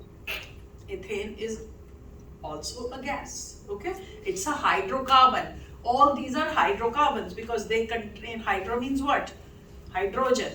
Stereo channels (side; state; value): both; identical; correlation 1.00